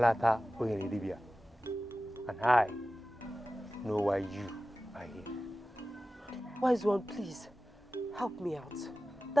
Oyenidibia. And I know why you are here. Wise one, please, help me out.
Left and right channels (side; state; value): both; normal; correlation 0.96